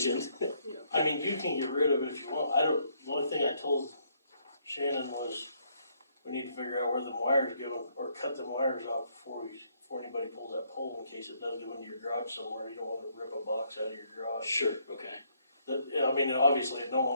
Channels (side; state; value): both; inverted; correlation -0.70